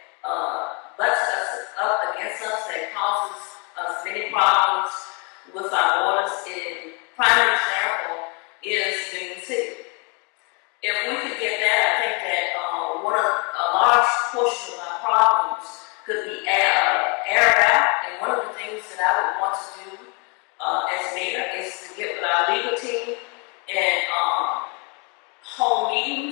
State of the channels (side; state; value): right; quieter; 33.2 dB